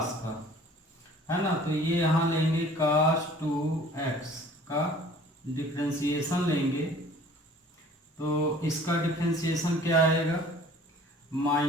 का, है ना। तो ये यहाँ लेंगे कास 2x का डिफ्रेंशिएशन लेंगे, तो इसका डिफ्रेंशिएशन क्या आएगा?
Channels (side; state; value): both; normal; correlation 0.50